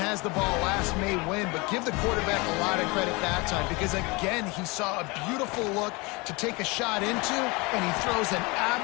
the ball last may win, but give the quarterback a lot of credit that time because, again, he saw a beautiful look to take a shot into, and he throws an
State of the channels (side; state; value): right; quieter; 26.2 dB